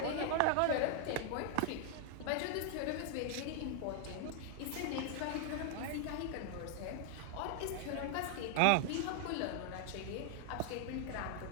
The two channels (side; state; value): both; different; correlation 0.00